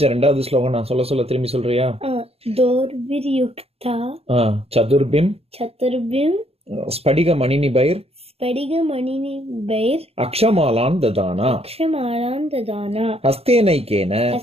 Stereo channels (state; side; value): late; left; 0.29 ms